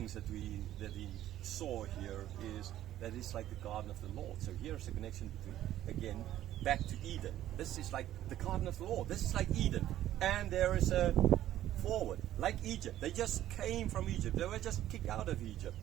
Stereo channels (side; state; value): left; quieter; 12.9 dB